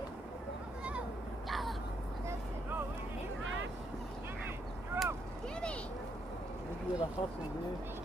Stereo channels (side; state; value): both; normal; correlation 0.76